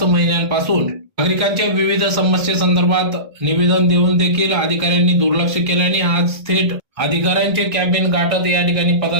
महिन्यांपासून नागरिकांच्या विविध समस्येसंदर्भात निवेदन देऊन देखील अधिकाऱ्यांनी दुर्लक्ष केल्याने आज थेट अधिकाऱ्यांचे कॅबिन गाठत या ठिकाणी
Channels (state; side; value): late; left; 1.6 ms